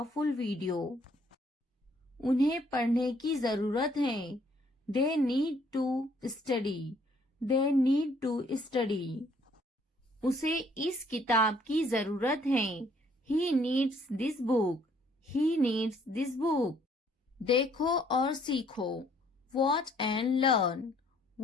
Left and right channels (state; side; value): normal; both; correlation 0.64